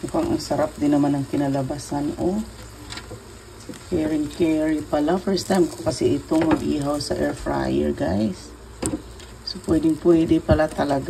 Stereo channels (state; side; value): identical; both; correlation 1.00